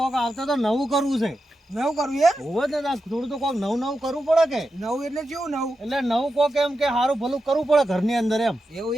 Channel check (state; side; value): normal; both; correlation 0.89